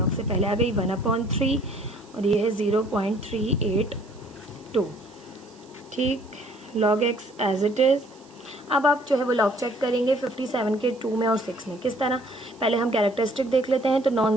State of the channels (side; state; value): right; noise; hiss, 28 dB below the sound